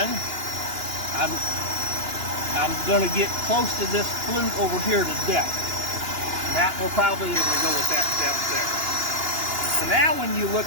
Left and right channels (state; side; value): late; left; 2.9 ms